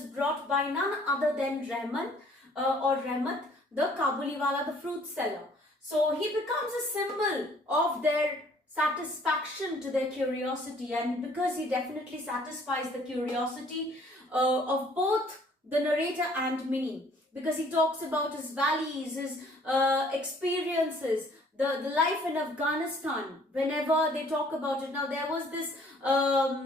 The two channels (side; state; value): both; normal; correlation 0.58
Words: brought by none other than Rahmat, the Kabuliwala, the fruit seller. So he becomes a symbol of their satisfaction to their curiosity, and because he definitely satisfies the curiosity of both the narrator and Minnie, because he talks about his valleys, his experiences, the life in Afghanistan. Whenever they talk about it, now there was this